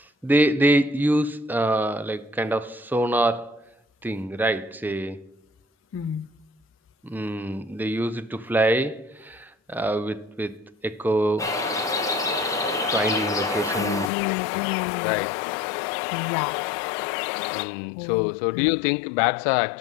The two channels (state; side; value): drops out; right; at 14.1 s